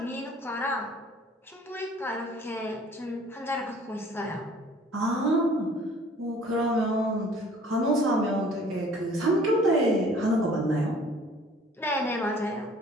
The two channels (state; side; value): normal; both; correlation 0.53